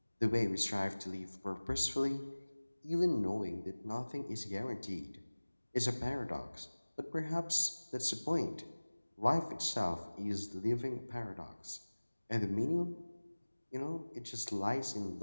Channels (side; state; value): both; inverted; correlation -1.00